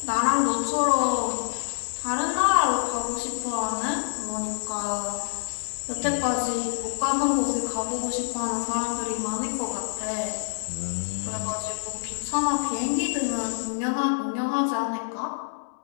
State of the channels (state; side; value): silent; right; digital silence